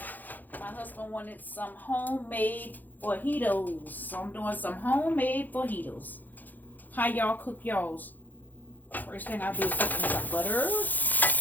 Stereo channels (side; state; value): right; late; 0.085 ms